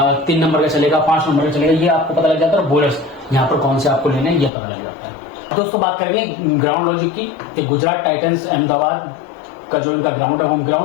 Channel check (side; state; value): right; drops out; at 4.5 s